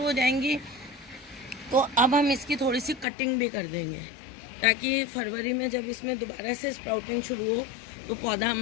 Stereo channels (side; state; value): right; drops out; at 3.1 s